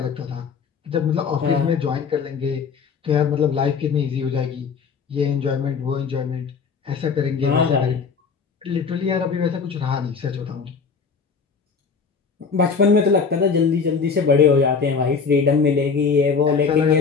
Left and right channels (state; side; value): quieter; right; 5.5 dB